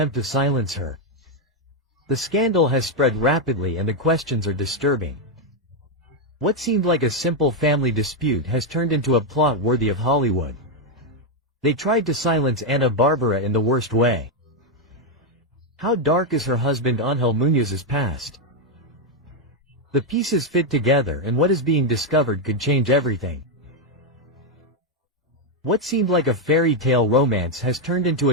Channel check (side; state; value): both; normal; correlation 0.02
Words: to silence her. The scandal has spread rapidly and the questions are disturbing. What seemed like a simple family dispute has turned into a plot worthy of Hollywood. They tried to silence Ana Bárbara in the worst way. How dark is her husband Ángel Muñoz's past? The pieces fit together and what is being discovered could change everything. What seemed like a fairy tale romance has turned into